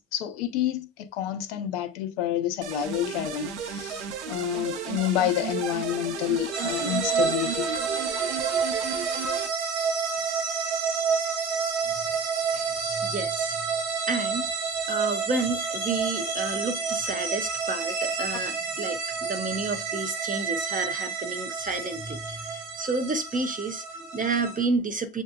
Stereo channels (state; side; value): normal; both; correlation 0.31